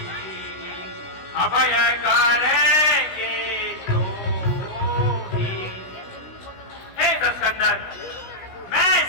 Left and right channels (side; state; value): right; late; 16 ms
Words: अभय करेंगे चोरी। हे दशकंदर, मैं